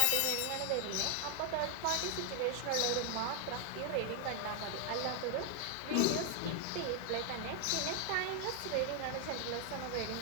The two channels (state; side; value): different; both; correlation 0.01